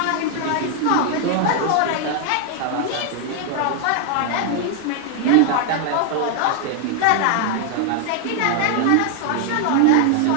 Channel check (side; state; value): both; different; correlation 0.00